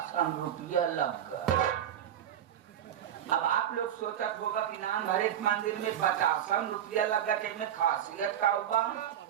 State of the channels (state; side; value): quieter; left; 10.2 dB